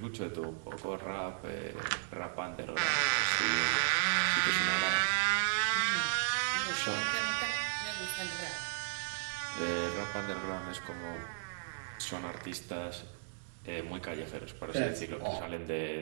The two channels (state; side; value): silent; left; digital silence